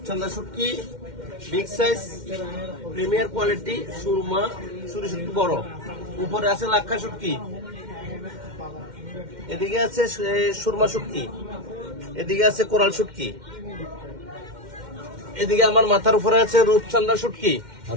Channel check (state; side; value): late; left; 2.1 ms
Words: শুটকি বিগ সাইজ প্রিমিয়ার কোয়ালিটি, সুরমা সুরি শুটকি বড়। উপরে আছে লাক্ষা শুটকি, এদিকে আছে সুরমা শুটকি, এদিকে আছে কোরাল শুটকি, এদিকে আমার মাথার উপরে আছে রূপচাঁদা শুটকি,